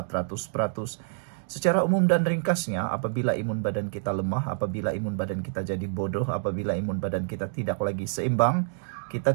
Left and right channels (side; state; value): left; silent; digital silence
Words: Secara umum dan ringkasnya, apabila imun badan kita lemah, apabila imun badan kita jadi bodoh, apabila imun badan kita tidak lagi seimbang,